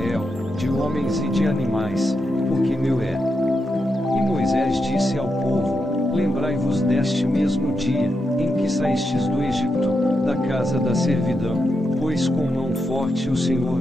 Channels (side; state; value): both; normal; correlation 0.85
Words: de homens e de animais, porque meu é. E Moisés disse ao povo: lembrai-vos deste mesmo dia, em que saístes do Egito, da casa da servidão, pois com mão forte o Senhor